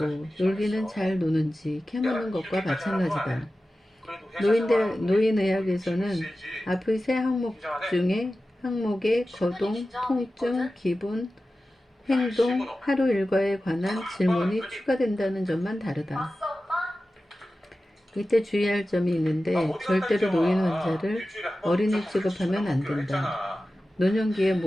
놀기는 잘 노는지 캐묻는 것과 마찬가지다. 노인의학에서는 앞의 세 항목 중에 항목에 거동, 통증, 기분, 행동, 하루 일과에 관한 질문이 추가된다는 점만 다르다. 이때 주의할 점이 있는데 절대로 노인 환자를 어린이 취급하면 안 된다. 노년기의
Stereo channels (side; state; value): both; normal; correlation 0.94